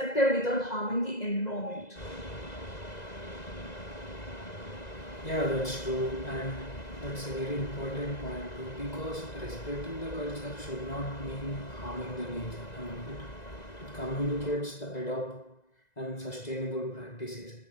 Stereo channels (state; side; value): late; right; 2.0 ms